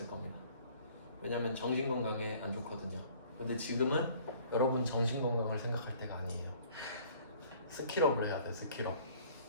겁니다. 왜냐면 정신건강에 안 좋거든요. 근데 지금은 여러분 정신건강을 생각할 때가 아니에요. 스킬업을 해야 돼. 스킬업.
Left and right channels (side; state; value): both; inverted; correlation -0.54